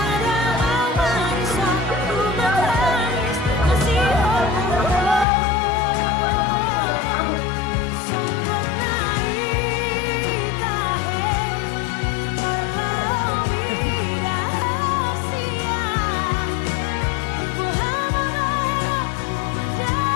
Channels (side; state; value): right; drops out; at 5.2 s